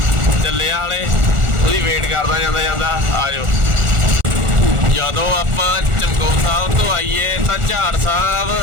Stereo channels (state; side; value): late; left; 1.4 ms